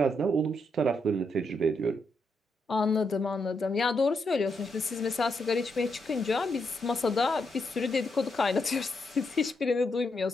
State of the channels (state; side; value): normal; both; correlation 0.80